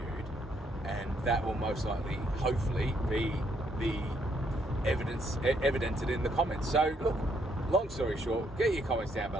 and that will most likely, hopefully, be the evidented in the comments. So look, long story short, get your comments down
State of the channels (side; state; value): both; normal; correlation 0.72